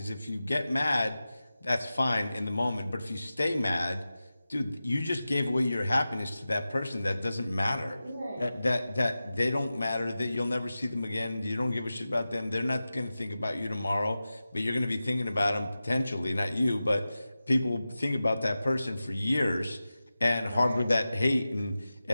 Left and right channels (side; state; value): both; inverted; correlation -0.94